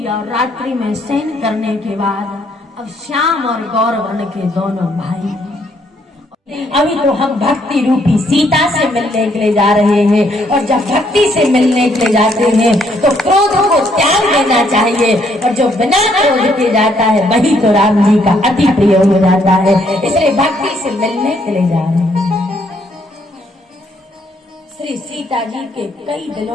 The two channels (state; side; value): normal; both; correlation 0.70